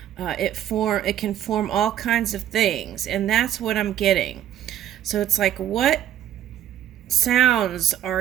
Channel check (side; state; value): left; quieter; 11.3 dB